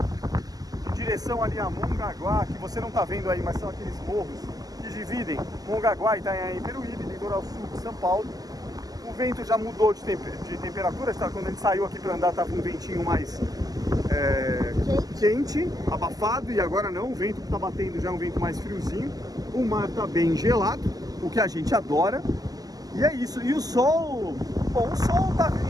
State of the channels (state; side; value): late; left; 0.18 ms